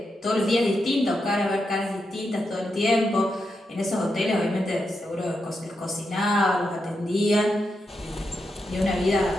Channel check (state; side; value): normal; both; correlation 0.85